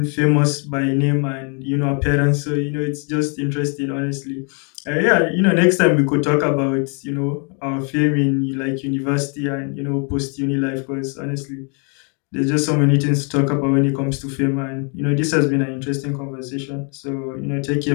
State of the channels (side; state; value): right; quieter; 38.2 dB